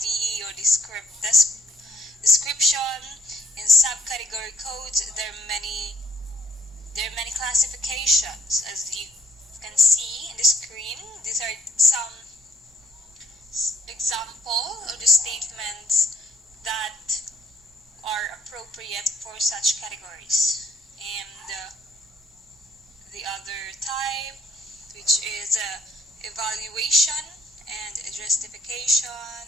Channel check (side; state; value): both; normal; correlation 0.59